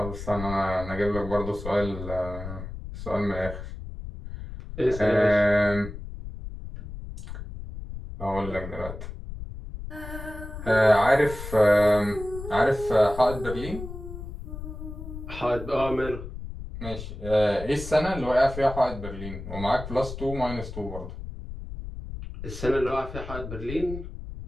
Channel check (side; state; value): left; noise; rumble, 10 dB below the sound